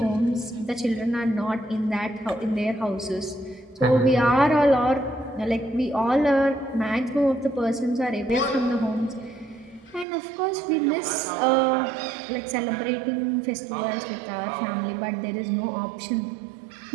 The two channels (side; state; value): left; drops out; at 10.1 s